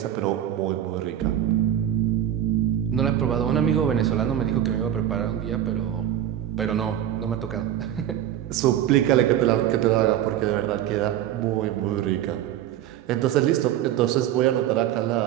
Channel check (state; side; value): quieter; left; 11.3 dB